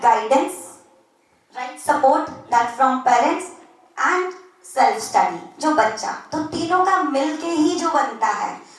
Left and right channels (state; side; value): identical; both; correlation 1.00